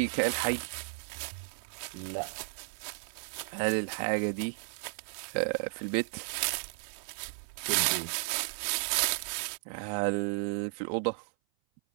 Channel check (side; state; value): left; silent; 55 dB below the other